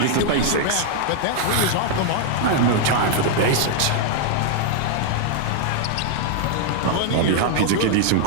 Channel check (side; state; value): both; different; correlation 0.00